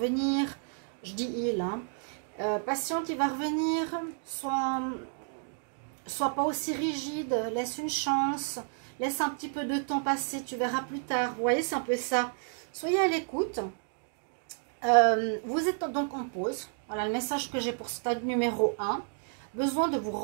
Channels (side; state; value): left; silent; 57 dB below the other